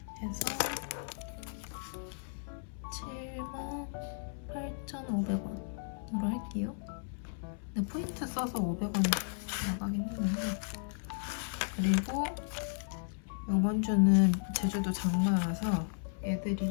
해서 78,500원으로 할게요. 근데 포인트 써서 500원 나가긴 했는데, 그리고 이번 주는 제주도 장마라서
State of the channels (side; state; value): right; silent; 55 dB below the other